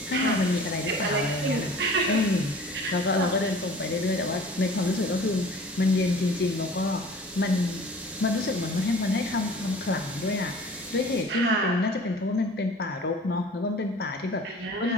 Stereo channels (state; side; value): normal; both; correlation 0.46